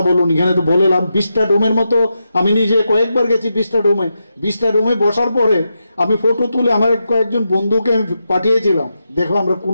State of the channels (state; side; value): inverted; both; correlation -0.86